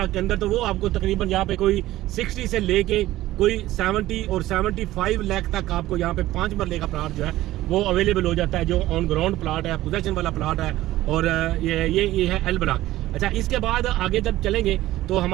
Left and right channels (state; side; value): quieter; left; 15.7 dB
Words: के अंदर तो वो आपको तकरीबन यहाँ पे कोई 60 से लेके कोई 70 और 75 लाख तक आपको यहाँ पे 5 मरले का प्लाट जो है वो अवेलेबल हो जाता है, जो ऑन ग्राउंड प्लाट है, पोजेशन वाला प्लाट है। और ये है एल ब्लॉक। अच्छा, इसके बाद आगे जब चलेंगे तो